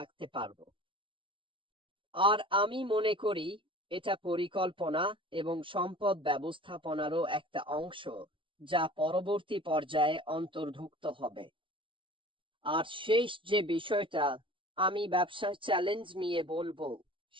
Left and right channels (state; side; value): late; left; 0.25 ms